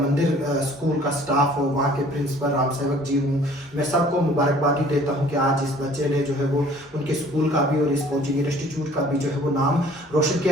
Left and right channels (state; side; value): normal; both; correlation 0.53